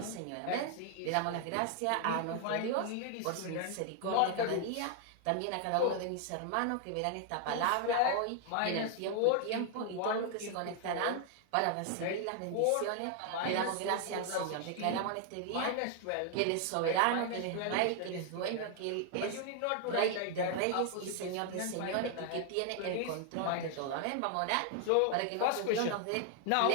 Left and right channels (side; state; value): both; different; correlation 0.00